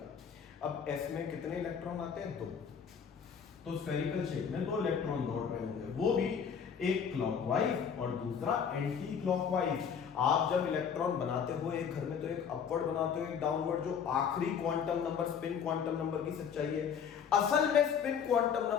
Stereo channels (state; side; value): quieter; right; 7.2 dB